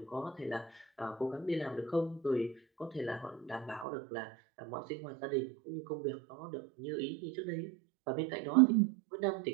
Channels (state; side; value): drops out; left; at 3.9 s